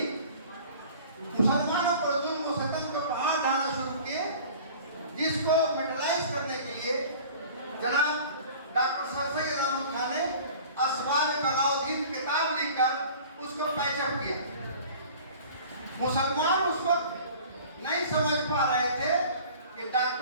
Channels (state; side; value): inverted; both; correlation -0.44